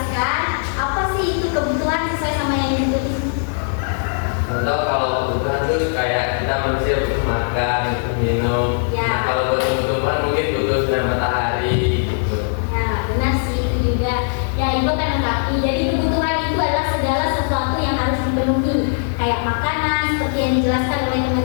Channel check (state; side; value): silent; right; 56 dB below the other